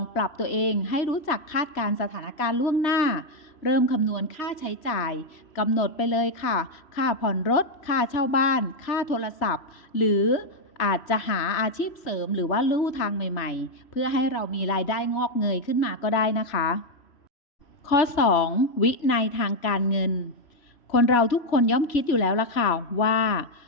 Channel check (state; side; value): late; right; 3.1 ms